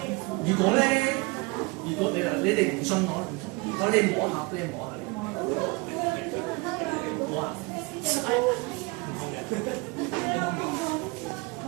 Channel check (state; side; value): quieter; left; 26.7 dB